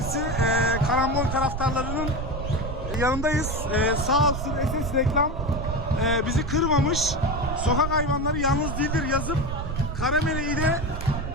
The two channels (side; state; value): right; noise; rumble, 4 dB below the sound